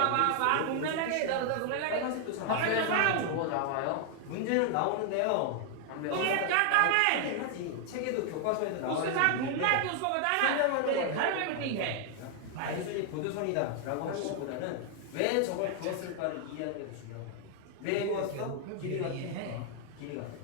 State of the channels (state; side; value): different; both; correlation 0.00